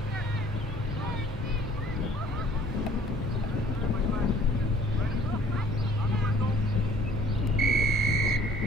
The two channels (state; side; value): normal; both; correlation 0.55